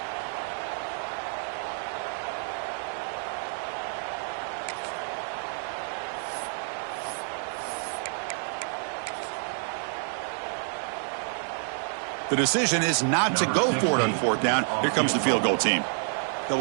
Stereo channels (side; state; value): left; silent; 56 dB below the other